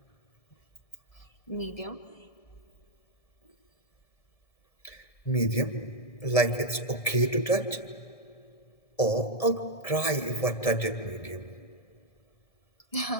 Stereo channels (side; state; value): right; late; 1.7 ms